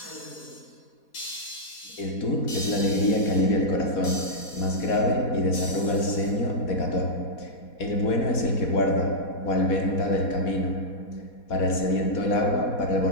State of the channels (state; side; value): late; right; 4.2 ms